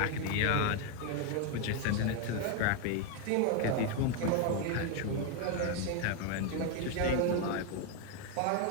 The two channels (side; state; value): both; different; correlation 0.01